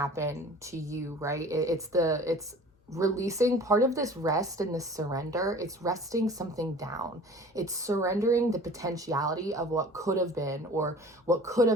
to you, right? It's releasing part of this rest and this surrender. It's resting something down. It's surrendering the potentiality of what could have been or what could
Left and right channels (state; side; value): normal; both; correlation 0.45